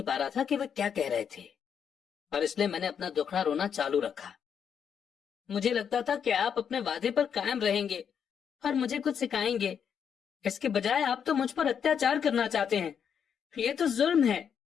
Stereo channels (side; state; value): right; quieter; 7.6 dB